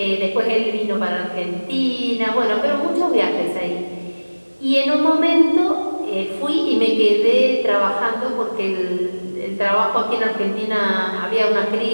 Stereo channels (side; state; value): both; inverted; correlation -1.00